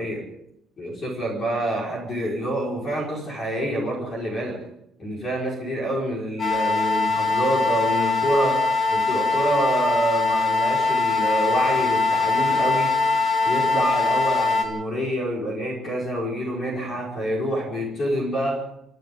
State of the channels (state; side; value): normal; both; correlation 0.76